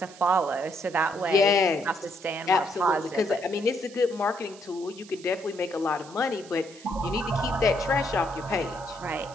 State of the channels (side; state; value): right; noise; hiss, 20 dB below the sound